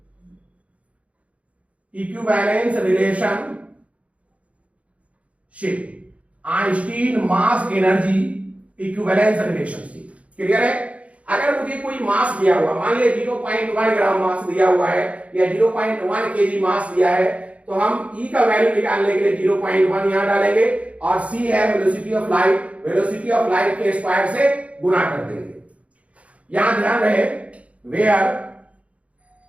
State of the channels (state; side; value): late; left; 0.065 ms